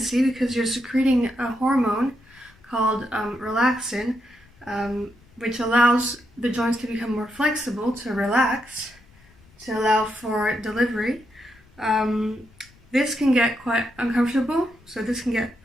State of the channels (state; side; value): noise; left; rumble, 28 dB below the sound